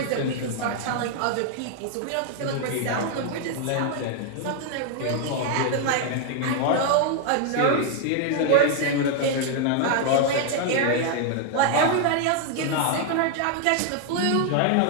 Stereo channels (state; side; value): different; both; correlation 0.00